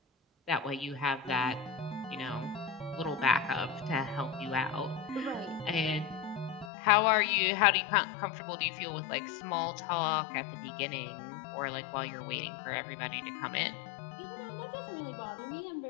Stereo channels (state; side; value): drops out; right; at 6.7 s